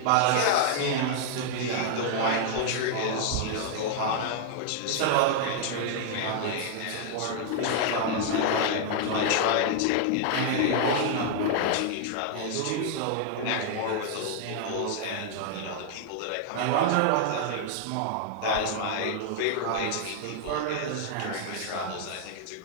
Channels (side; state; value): both; different; correlation 0.00